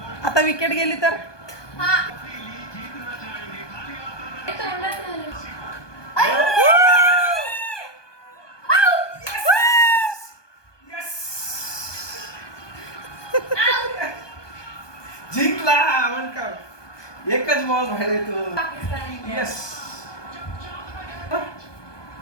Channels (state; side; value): late; right; 1.2 ms